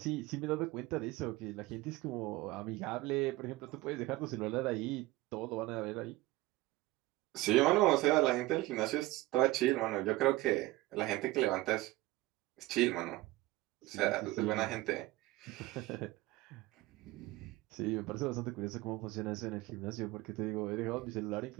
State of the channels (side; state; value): left; quieter; 19.2 dB